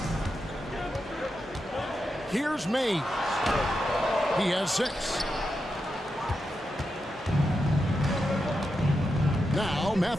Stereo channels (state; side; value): normal; both; correlation 0.87